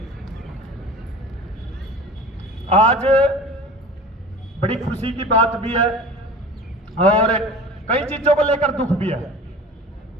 आज बड़ी खुशी की बात भी है और कई चीज़ों को लेकर दुख भी है।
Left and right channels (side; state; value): both; normal; correlation 0.39